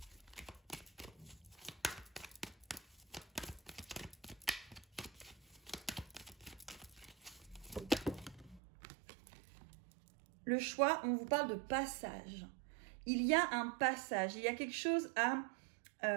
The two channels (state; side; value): drops out; left; at 8.6 s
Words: Le choix, on vous parle de passage. Il y a un passage, il y a quelque chose à